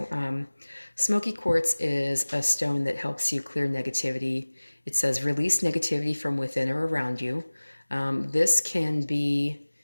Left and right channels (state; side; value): inverted; both; correlation -1.00